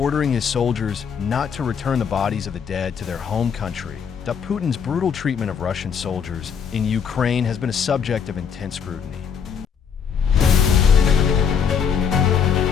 his soldiers not to return the bodies of the dead to their home country. That Putin's brutal treatment of Russian soldiers in Ukraine has been a subject of intense scrutiny.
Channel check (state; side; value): quieter; right; 7.0 dB